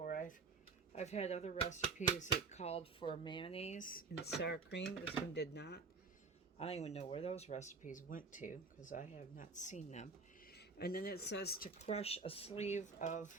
I've had other recipes that called for mayonnaise and sour cream. This one did not. I don't even know where those recipes went to because I have not seen them. And then it says to crush a sleeve of,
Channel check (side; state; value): left; quieter; 4.4 dB